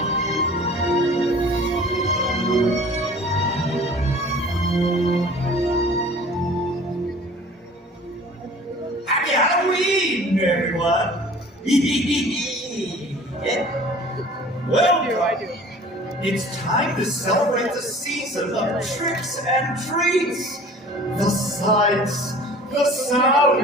Happy Halloween, everyone! Well, it's time to celebrate the season of tricks and treats. The sights, the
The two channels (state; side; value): normal; both; correlation 0.46